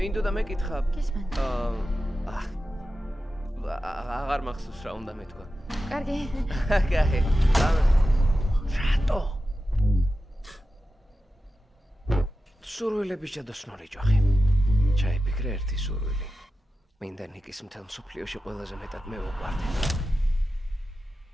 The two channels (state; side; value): normal; both; correlation 0.92